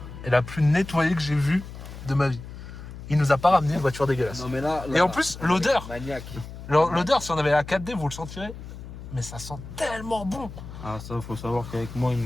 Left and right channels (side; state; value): left; noise; hum, 12 dB below the sound